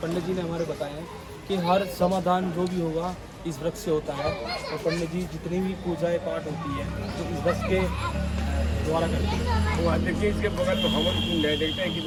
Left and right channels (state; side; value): identical; both; correlation 1.00